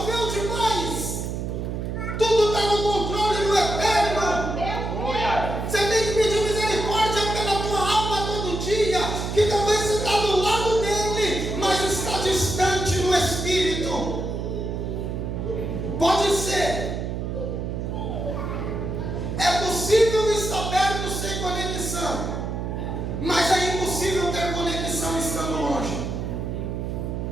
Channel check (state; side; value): noise; right; hum, 4 dB below the sound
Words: demais? Tudo está no controle do eterno. Você tem que pedir misericórdia pela tua alma todo dia, que talvez você está do lado dele, mas está distante no espírito. Pode ser. É possível estar perto sem conexão, mas é impossível ter conexão estando longe.